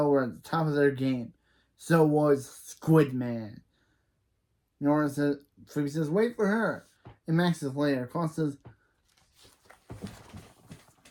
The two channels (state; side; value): identical; both; correlation 1.00